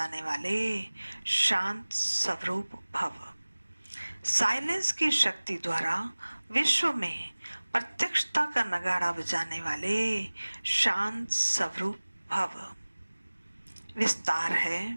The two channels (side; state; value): both; inverted; correlation -1.00